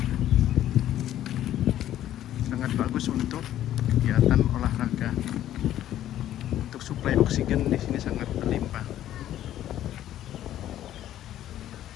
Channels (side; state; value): right; quieter; 12.2 dB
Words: Sangat bagus untuk kegiatan olahraga. Untuk suplai oksigen di sini sangat berlimpah.